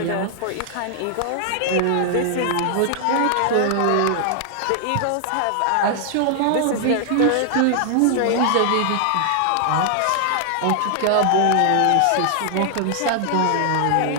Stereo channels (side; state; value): both; different; correlation 0.00